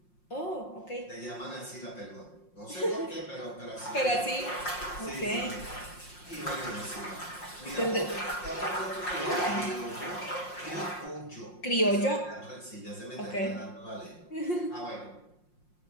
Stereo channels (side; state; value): right; late; 5.6 ms